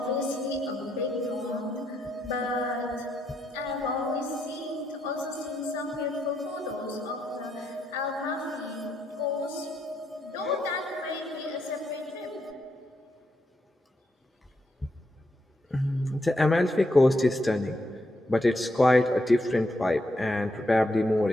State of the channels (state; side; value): normal; both; correlation 0.79